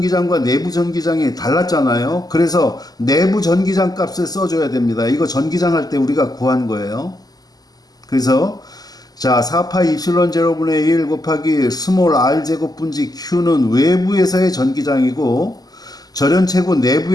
내부 전기장이 달랐잖아요. 그래서 내부 전기장 값을 써줘야 됩니다. 이거 전기장 할 때 우리가 구한 거예요. 그래서 자, 4파 입실론 제로분의 1 곱하기 스몰 r 제곱 분지 q는 외부에서의 전기장이고 절연체구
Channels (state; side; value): late; right; 0.18 ms